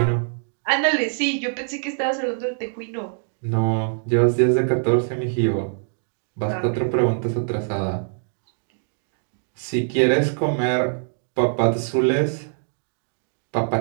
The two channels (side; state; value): left; silent; digital silence